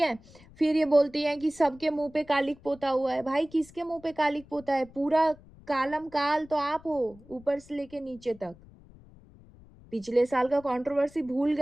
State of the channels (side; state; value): left; noise; rumble, 23 dB below the sound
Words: फिर ये बोलती हैं कि सबके मुँह पे कालिक पोता हुआ है। भाई किसके मुँह पे कालिक पोता है? पूरा कालम काल तो आप हो, ऊपर से लेके नीचे तक। पिछले साल का कंट्रोवर्सी भूल